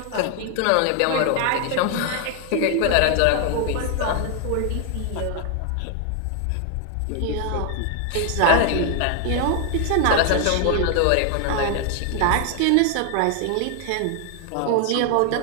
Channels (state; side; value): different; both; correlation 0.00